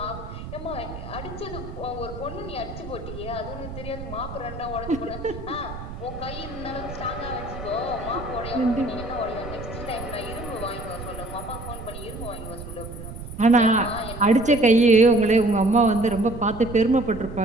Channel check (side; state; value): right; noise; rumble, 11 dB below the sound